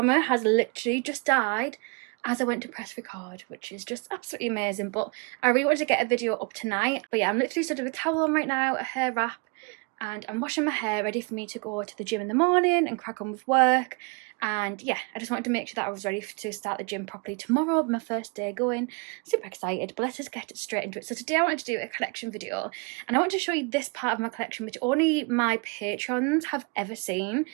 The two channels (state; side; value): quieter; left; 31.6 dB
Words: has literally just died as I went to press record, which is just absolutely amazing. But I really wanted to get a video up tonight. But yeah, I'm literally stood with a towel on right now, a hair wrap, and I'm washing my hair ready for me to go to the gym in the morning and crack on with work. And yeah, I just wanted to make sure that I was ready to start the gym properly tomorrow, my first day going. Super excited, but let us get straight into it. So today I wanted to do a collection video, and I want to show you this part of my collection which only my patrons have ever seen.